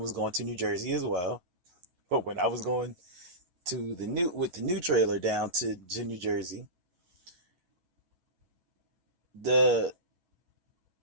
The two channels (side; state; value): left; late; 11 ms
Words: was going to New Jersey as well. But when I was going to the new trailer down to New Jersey, the